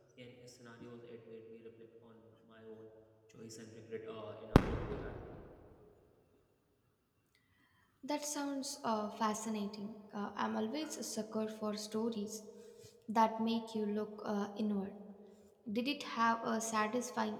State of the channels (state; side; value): identical; both; correlation 1.00